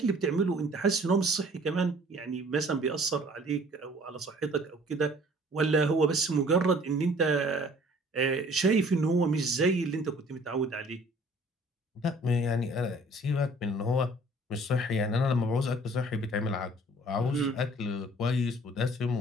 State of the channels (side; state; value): both; normal; correlation 0.54